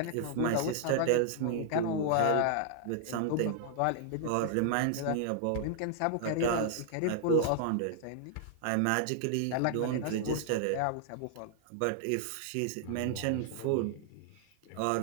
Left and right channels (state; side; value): different; both; correlation -0.01